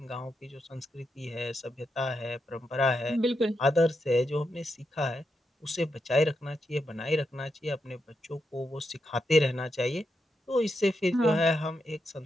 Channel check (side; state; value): both; normal; correlation 0.84